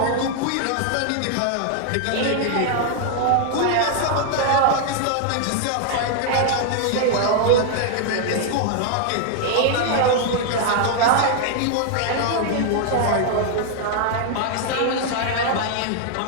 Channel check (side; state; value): both; different; correlation 0.00